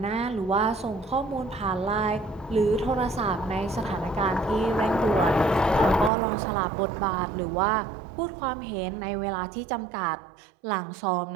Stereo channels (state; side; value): drops out; left; at 6.1 s